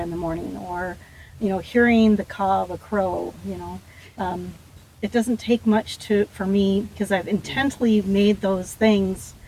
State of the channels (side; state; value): both; identical; correlation 1.00